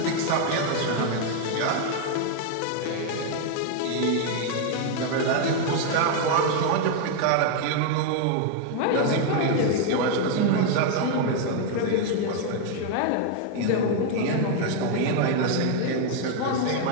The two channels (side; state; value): both; different; correlation 0.00